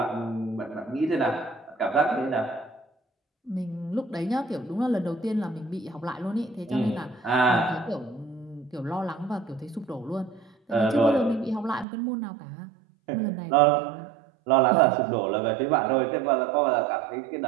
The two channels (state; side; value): drops out; left; at 11.9 s